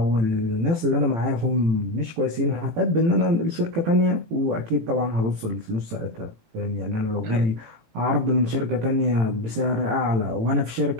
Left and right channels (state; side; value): late; left; 18 ms